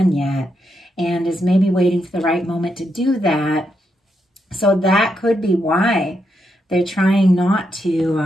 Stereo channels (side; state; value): both; normal; correlation 0.81